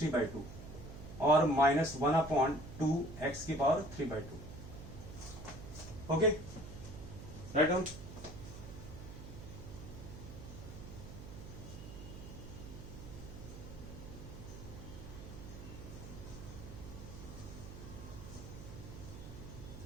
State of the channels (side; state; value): right; noise; hum, 11 dB below the sound